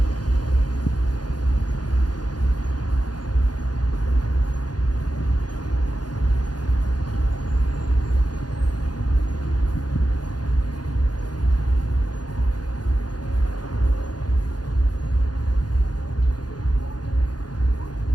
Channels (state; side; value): late; right; 0.69 ms